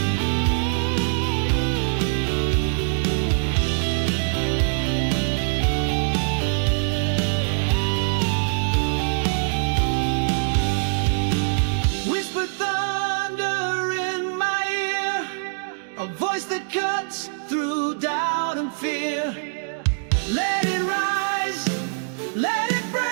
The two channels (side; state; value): left; silent; digital silence